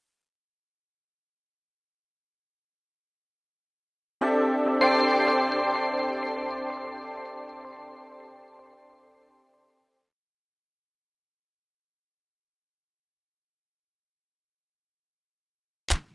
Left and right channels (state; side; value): identical; both; correlation 1.00